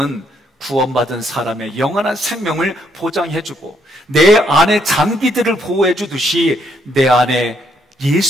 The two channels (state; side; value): normal; both; correlation 0.72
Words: 구원받은 사람의 영원한 생명을 보장해주고 내 안에 장기들을 보호해주듯이 내 안에